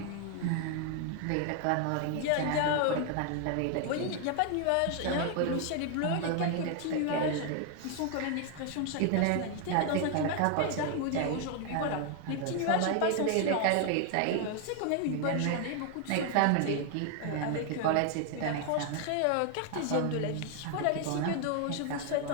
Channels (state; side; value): different; both; correlation 0.00